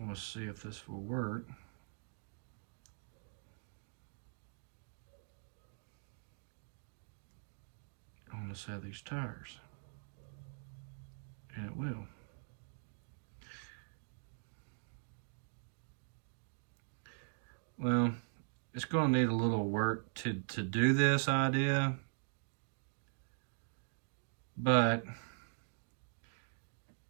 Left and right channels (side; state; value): left; silent; digital silence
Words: to see if this will work. On the set of these tires. And it will. Well, it's going to need a little work to do this idea, but